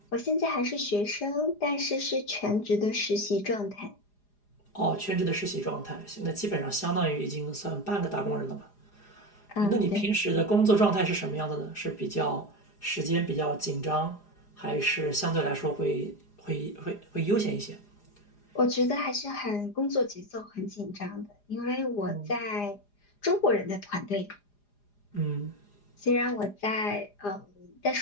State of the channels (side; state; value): right; late; 4.9 ms